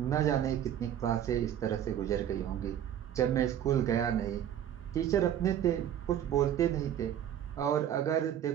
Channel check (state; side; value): quieter; left; 10.4 dB